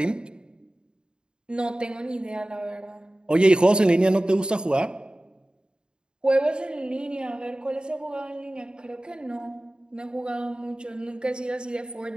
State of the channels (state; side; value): late; left; 0.050 ms